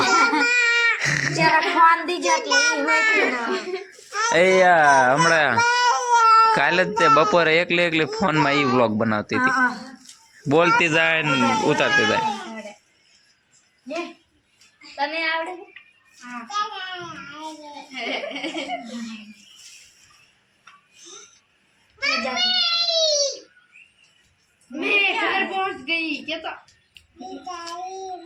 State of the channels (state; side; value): identical; both; correlation 1.00